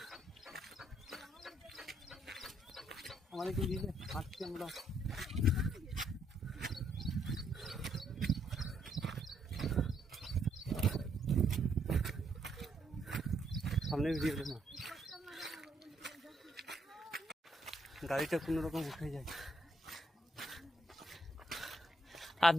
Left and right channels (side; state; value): both; normal; correlation 0.73